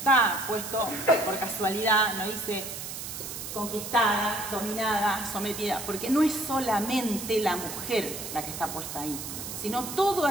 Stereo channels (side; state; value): right; noise; hiss, 8 dB below the sound